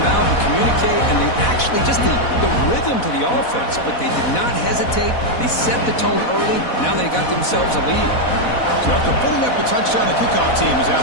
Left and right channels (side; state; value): right; late; 4.1 ms